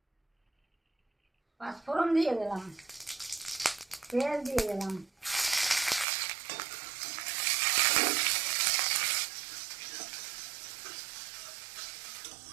পাঁচফোড়ন দিয়ে দিলাম, পেঁয়াজ দিয়ে দিলাম,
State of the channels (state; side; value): drops out; left; at 6.1 s